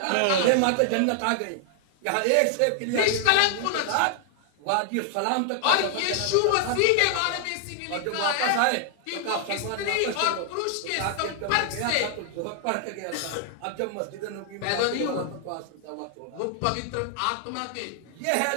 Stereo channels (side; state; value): both; different; correlation 0.00